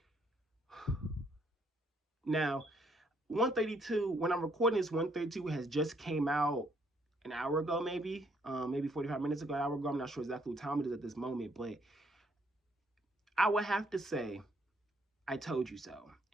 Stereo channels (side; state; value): both; normal; correlation 0.69